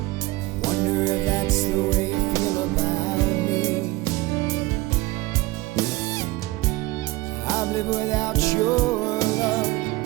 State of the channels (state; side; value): quieter; left; 20.3 dB